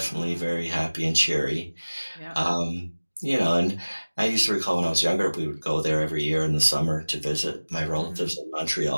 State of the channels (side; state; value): both; inverted; correlation -1.00